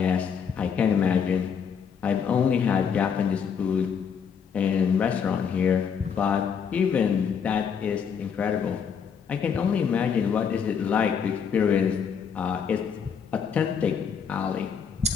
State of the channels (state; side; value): quieter; right; 6.9 dB